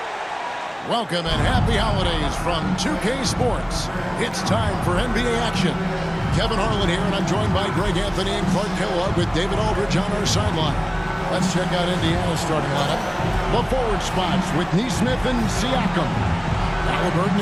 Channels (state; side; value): identical; both; correlation 1.00